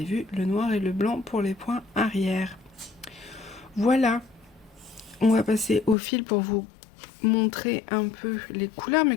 vu, le noir et le blanc pour les points arrière. Voilà, on va passer au fil pour vous montrer un peu les couleurs, mais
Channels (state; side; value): drops out; right; at 6.0 s